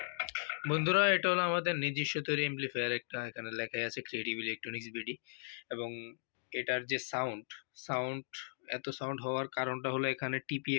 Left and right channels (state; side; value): silent; right; digital silence